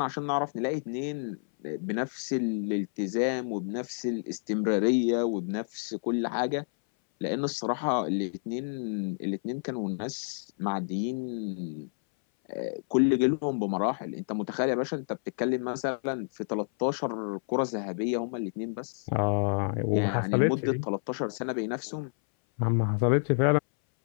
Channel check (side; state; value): right; silent; 58 dB below the other